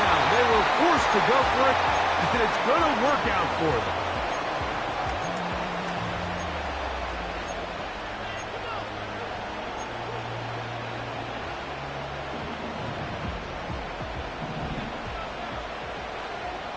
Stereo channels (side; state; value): both; identical; correlation 1.00